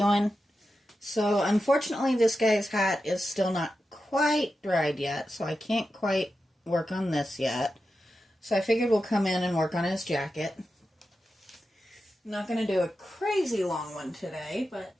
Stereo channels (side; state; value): both; normal; correlation 0.90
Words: So unfortunately this guy's hat is still not quite dried yet, so I can't quite work on this yet. So I figured we'll come in and work on his jacket. I'm not going to do a crazy long one today, but